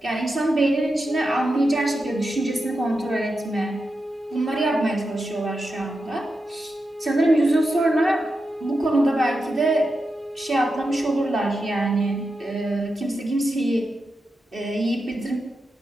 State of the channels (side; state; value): both; normal; correlation 0.89